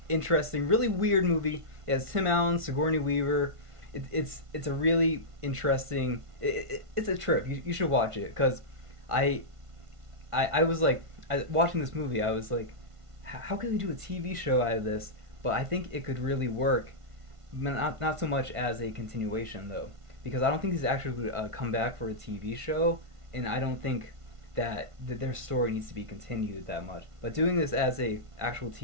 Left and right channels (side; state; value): left; late; 1.5 ms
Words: interesting, really weird movie. It has Tim Allen, Sigourney Weaver. It's a really interesting. It's a trip. You should watch it, because I was like, watching this movie, I was like, how can they do a TV show out of this? But I think it could really work, not so much as a continuation though, because I don't think these actors would come back for a TV show, and I don't think that their story needs to be continued that much. But doing this as a actual